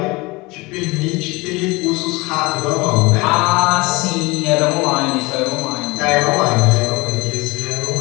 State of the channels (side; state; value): right; quieter; 23.8 dB